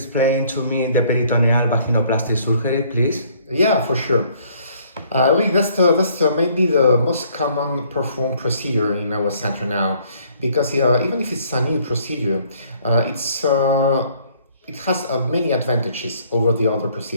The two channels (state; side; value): inverted; both; correlation -0.61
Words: to me the peritoneal vaginoplasty surgery, please? Yeah, for sure. That's maybe the most common performed procedure in our center now, because even if it's a new procedure, it has many advantages over the other